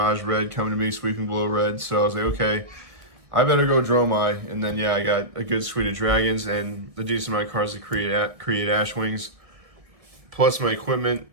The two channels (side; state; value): left; late; 1.6 ms